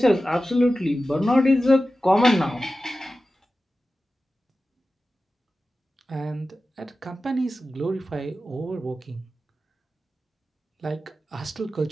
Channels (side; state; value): both; normal; correlation 0.94